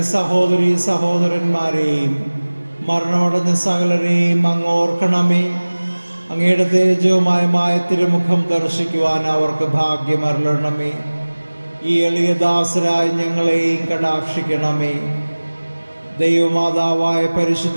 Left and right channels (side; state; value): both; inverted; correlation -1.00